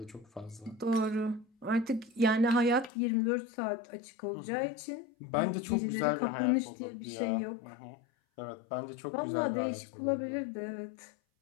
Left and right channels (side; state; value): right; drops out; at 2.9 s